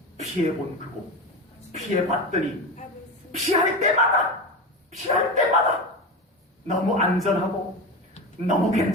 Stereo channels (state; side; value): normal; both; correlation 0.23